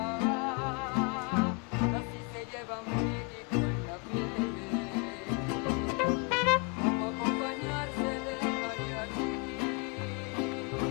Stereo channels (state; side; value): quieter; right; 32.3 dB